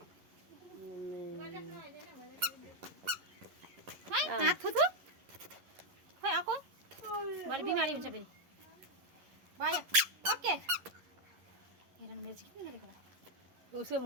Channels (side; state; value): left; late; 11 ms